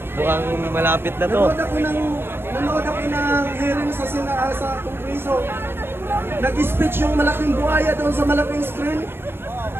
mukhang malapit na to. Nanood ako ng hearing sa Kongreso. Nag-speech yung malaking buhaya doon sa malaking screen.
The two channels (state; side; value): late; left; 0.11 ms